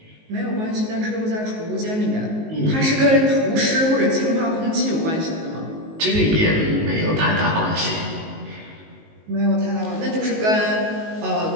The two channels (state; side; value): late; left; 19 ms